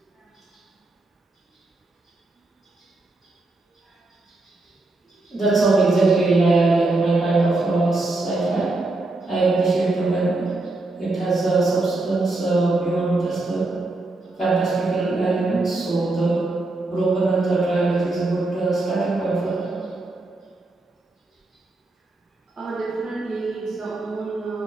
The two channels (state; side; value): quieter; left; 3.0 dB